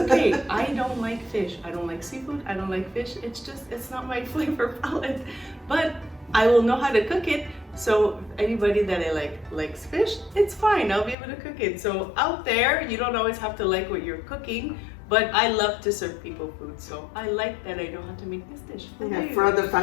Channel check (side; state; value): right; drops out; at 11.2 s